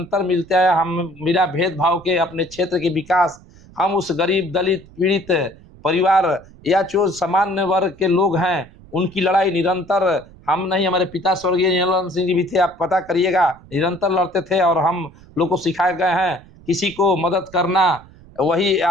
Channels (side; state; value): right; noise; rumble, 23 dB below the sound